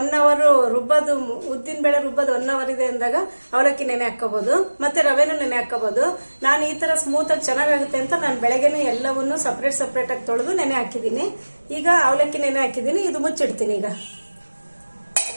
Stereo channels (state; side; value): inverted; both; correlation -1.00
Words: ಅವರ್ ರುಬ್ಬೋದು, ಉದ್ದಿನ ಬೇಳೆ ರುಬ್ಬೋದು 1 ಅವರ್ ಇದೆ ಅಂದಾಗ ಅವಲಕ್ಕಿ ನೆನೆ ಹಾಕೋಬಹುದು, ಮತ್ತೆ ರವೆನೂ ನೆನೆ ಹಾಕೋಬಹುದು. ನಾನು ಈ ತರ ಸ್ಮೂತ್ ಆಗಿ ಚೆನ್ನಾಗುತ್ತೆ ಅಂತ ನಾನು ಬೆಳಗ್ಗೆನೇ ಎಲ್ಲವನ್ನೂ ಸಪರೇಟ್ ಆಗಿ ತೊಳೆದು ನೆನೆ ಹಾಕಿದ್ದೀನಿ. ಈಗ ಅವಲಕ್ಕಿ ನೆನೆ ಹಾಕಿದ್ದೀನಿ, ಇದು ಮುಚ್ಚಿಡ್ತೀನಿ. ಈಗ